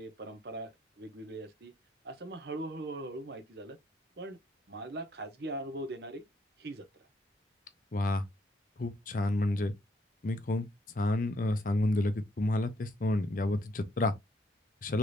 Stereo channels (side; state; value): both; normal; correlation 0.71